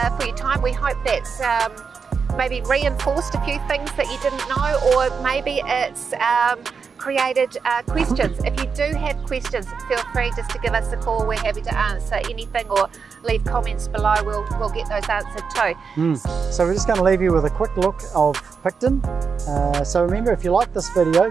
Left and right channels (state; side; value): quieter; left; 5.6 dB